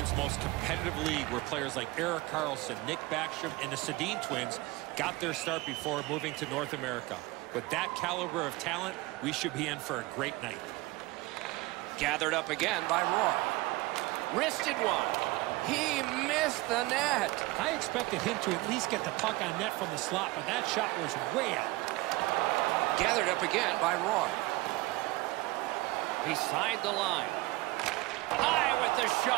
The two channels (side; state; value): left; quieter; 21.1 dB